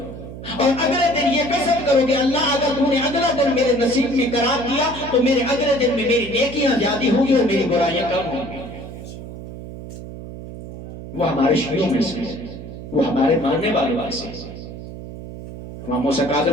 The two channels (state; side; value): noise; right; hum, 12 dB below the sound